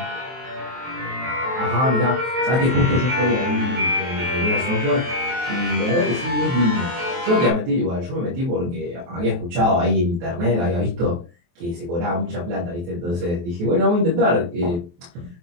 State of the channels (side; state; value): left; late; 23 ms